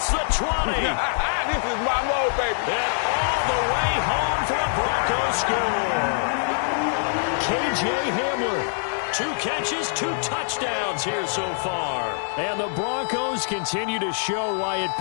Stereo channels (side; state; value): right; silent; digital silence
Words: the 20. This is my mode, baby. And all the way home for a Broncos score. K.J. Hamler. 2 catches, 2 touchdowns here so far. And the Broncos continue to show why it